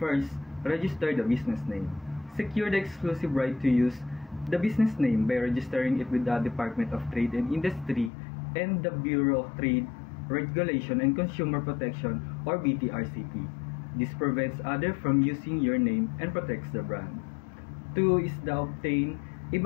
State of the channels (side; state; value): right; drops out; at 8.1 s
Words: register the business name. Secure the exclusive right to use the business name by registering it with the Department of Trade and Industry and the Bureau of Trade, Regulation and Consumer Protection or BTRCP. This prevents others from using your name and protects the brand. 2 is the obtain a